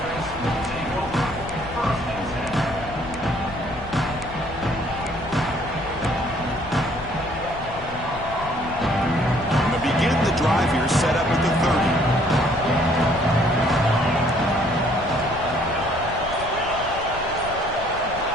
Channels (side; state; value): left; noise; rumble, 13 dB below the sound